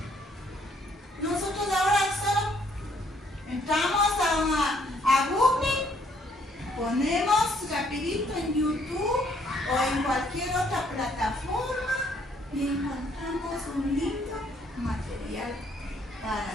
Nosotros ahora solo entramos a Google, ponemos rapidito en YouTube o en cualquier otra plataforma y encontramos un lindo material para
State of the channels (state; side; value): normal; both; correlation 0.67